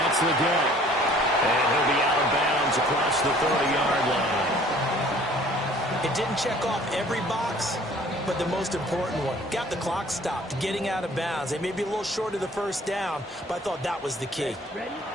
the get. And he'll be out of bounds across the 30-yard line. It didn't check off every box, but the most important one. Got the clock stopped, getting out of bounds. They may be a little short of the first down, but I thought that was the key.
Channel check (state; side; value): normal; both; correlation 0.53